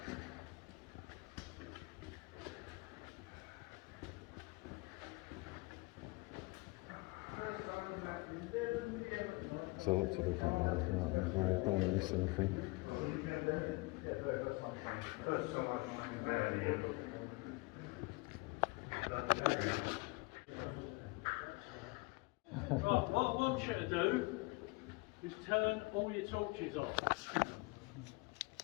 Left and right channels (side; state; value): right; quieter; 25.1 dB